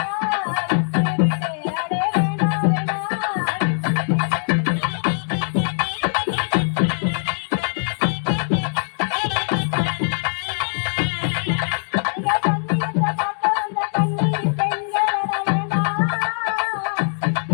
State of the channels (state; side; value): silent; right; digital silence